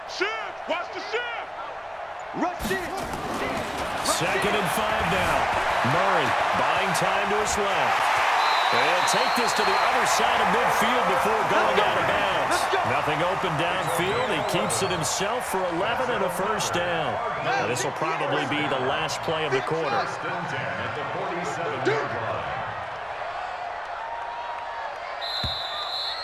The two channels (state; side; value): identical; both; correlation 1.00